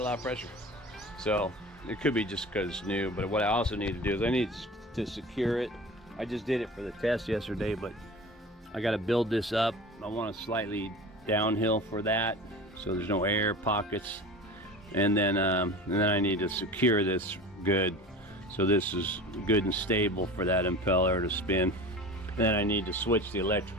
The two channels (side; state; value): both; normal; correlation 0.36